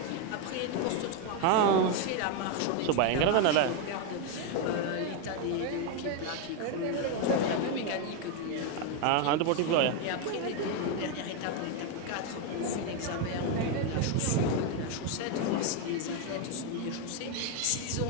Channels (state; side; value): different; both; correlation 0.01